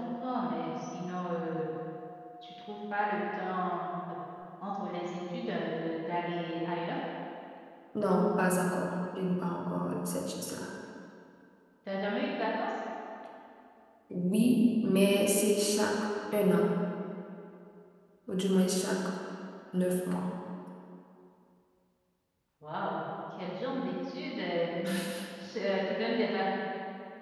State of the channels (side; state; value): both; identical; correlation 1.00